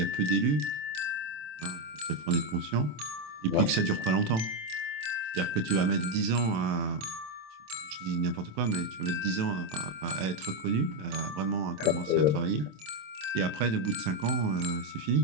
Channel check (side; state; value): left; late; 27 ms